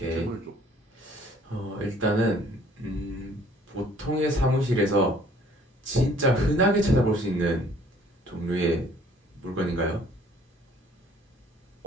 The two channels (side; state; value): both; normal; correlation 0.57